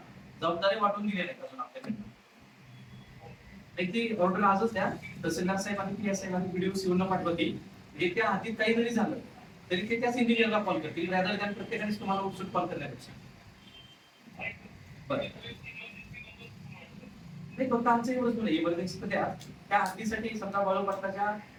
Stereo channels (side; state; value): both; identical; correlation 1.00